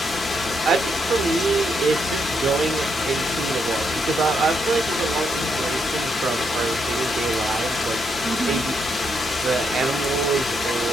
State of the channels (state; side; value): normal; both; correlation 0.78